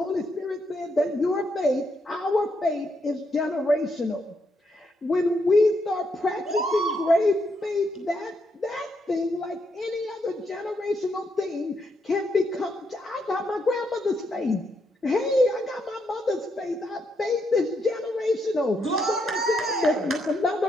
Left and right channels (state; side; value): normal; both; correlation 0.78